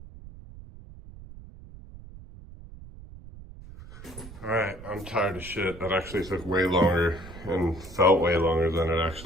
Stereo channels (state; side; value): noise; right; rumble, 16 dB below the sound